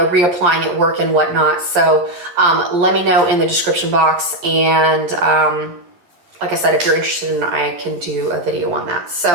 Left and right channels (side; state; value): left; late; 12 ms